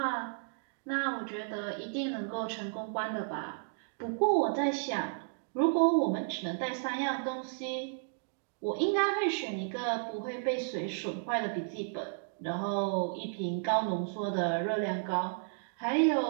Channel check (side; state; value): left; silent; digital silence